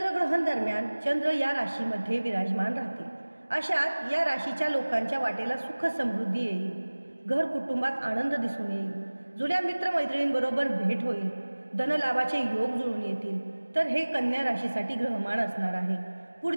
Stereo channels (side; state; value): both; inverted; correlation -1.00